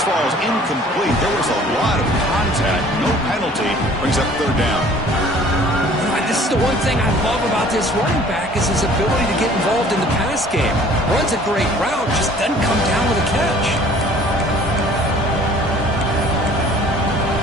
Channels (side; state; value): both; normal; correlation 0.52